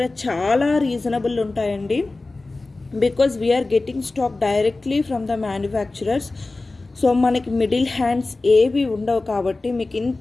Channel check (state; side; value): quieter; right; 3.3 dB